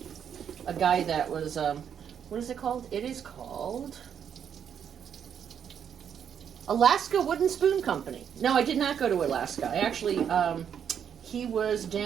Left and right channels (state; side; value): quieter; left; 8.2 dB